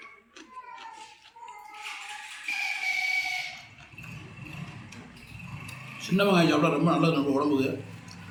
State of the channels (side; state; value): both; identical; correlation 1.00